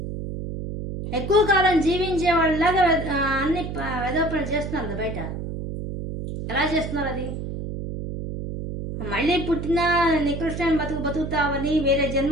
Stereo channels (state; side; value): noise; right; hum, 6 dB below the sound